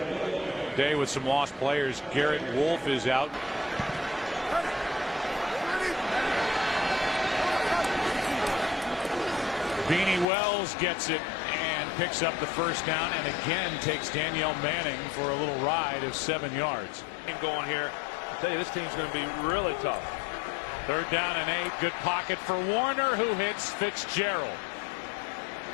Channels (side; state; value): right; drops out; at 10.2 s